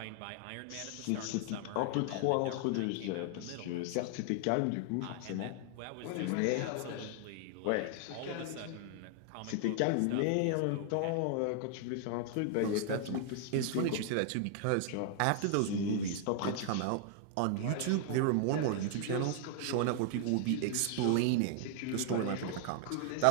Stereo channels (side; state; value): both; different; correlation 0.00